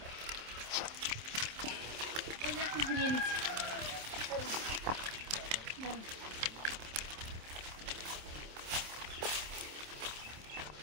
ওই যে এখন ঘুরিয়ে নিচ্ছি।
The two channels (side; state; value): left; late; 27 ms